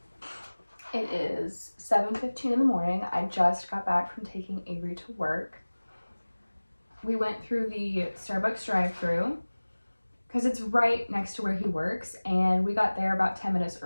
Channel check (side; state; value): both; inverted; correlation -1.00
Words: It is 7:15 in the morning. I just got back from taking Avery to work. We went through the Starbucks drive-thru because it's right next to where he works, and we got there about 10 minutes